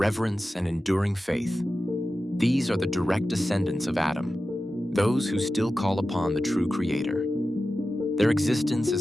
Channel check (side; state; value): both; normal; correlation 0.93